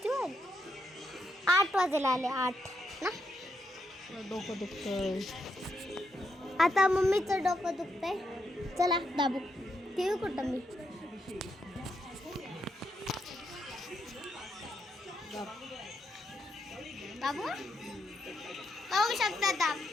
वाजले? 8 वाजेला आले. 8 ना. डोकं दुखतंय. आता मम्मीचं डोकं दुखतंय. चला दाबू. टीव्ही कुठं मी? दाबू बघू शकता. दाब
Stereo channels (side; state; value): both; normal; correlation 0.81